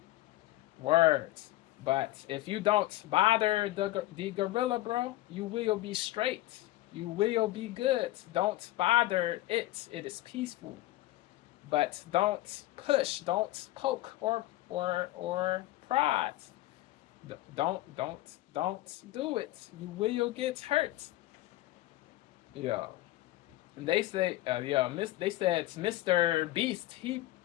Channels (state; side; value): quieter; right; 16.6 dB